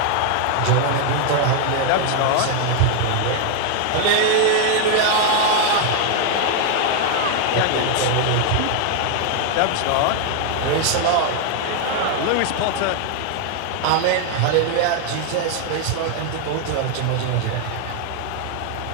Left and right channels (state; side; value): different; both; correlation 0.00